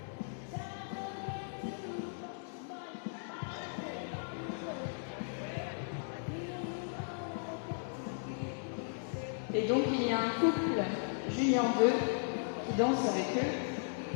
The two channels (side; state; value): right; silent; digital silence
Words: Et donc il y a un couple junior 2 qui danse avec eux